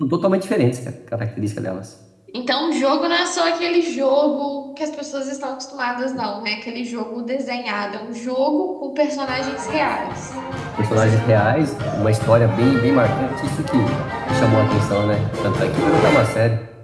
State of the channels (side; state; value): both; identical; correlation 1.00